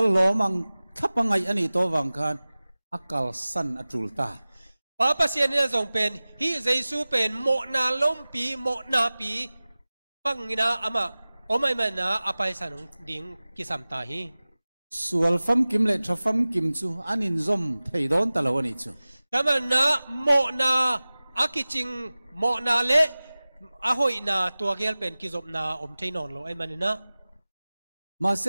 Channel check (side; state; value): both; inverted; correlation -0.98